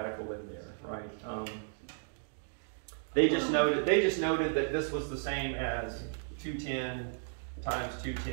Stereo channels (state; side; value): silent; left; digital silence